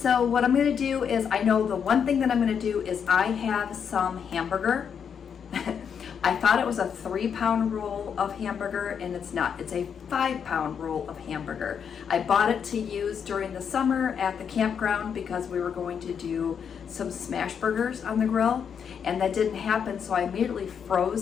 what I'm going to do is, I know the one thing that I'm going to do is I have some hamburger. I thought it was a 3-pound roll of hamburger, and it's not. It's a 5-pound roll of hamburger. I bought it to use during the summer at the campground because we were going to do some smash burgers on the grill, and that didn't happen, so I immediately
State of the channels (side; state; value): right; quieter; 7.3 dB